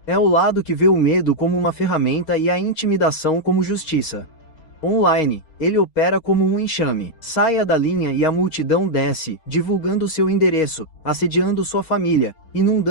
É o lado que vê o medo como uma ferramenta e a intimidação como justiça. Online, ele opera como um enxame. Saia da linha e a multidão desce, divulgando seu endereço, assediando sua família,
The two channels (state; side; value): late; right; 6.4 ms